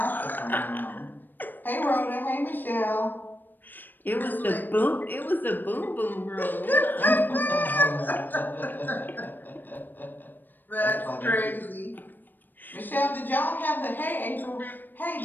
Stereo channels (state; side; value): late; right; 0.091 ms